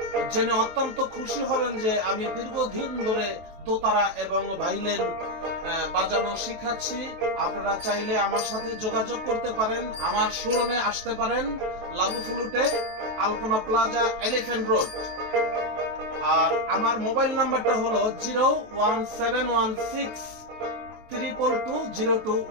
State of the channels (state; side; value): late; left; 23 ms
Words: জেনে অত্যন্ত খুশি হবেন যে আমি দীর্ঘদিন ধরে দোতারা এবং ভাইলেন বাজানো শিখাচ্ছি। আপনারা চাইলে আমার সাথে যোগাযোগ করতে পারেন, আমার শোরুমে আসতে পারেন লাবু ফ্লুটে, আলপনা প্লাজা, এলিফ্যান্ট রোড। আর আমার মোবাইল নাম্বারটা হলো 01716 322